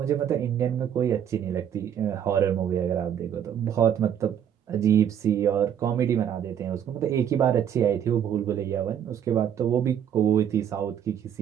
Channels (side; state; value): left; quieter; 9.2 dB